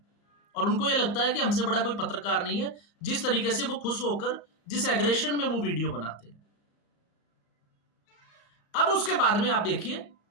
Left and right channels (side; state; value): right; late; 34 ms